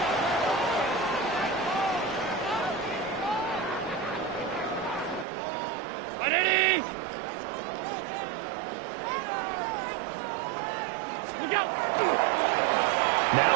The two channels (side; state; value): left; drops out; at 5.2 s